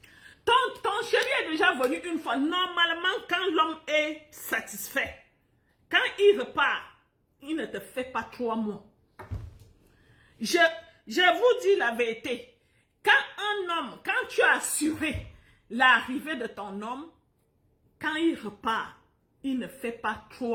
Ton chéri est déjà venu une fois. Normalement, quand l'homme est satisfait, quand il repart, il ne te fait pas 3 mois. Je vous dis la vérité. Quand un homme, quand tu as assuré l'arrivée de ton homme, quand il repart, il ne fait pas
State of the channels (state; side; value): identical; both; correlation 1.00